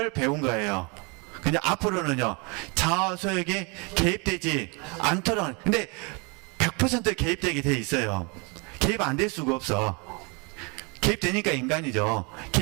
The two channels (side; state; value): left; quieter; 31.0 dB